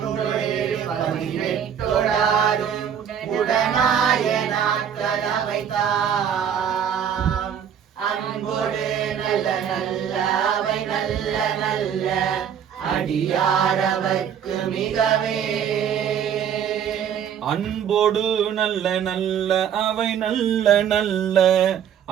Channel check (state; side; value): quieter; left; 8.6 dB